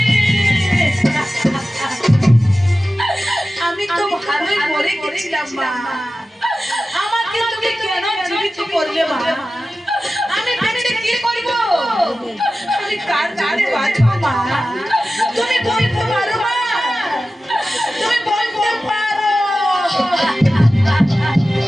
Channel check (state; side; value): normal; both; correlation 0.95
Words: আমি তো ভালোই মরে গেছিলাম মা, আমাকে তুমি কেন জীবিত করলে মা? আমি বেঁচে কি করব? আমি কার জানে বাঁচবো মা? তুমি বলতে পারো মা, তুমি বলতে পারো।